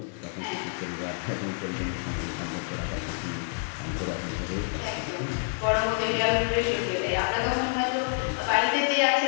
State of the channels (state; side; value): silent; right; 59 dB below the other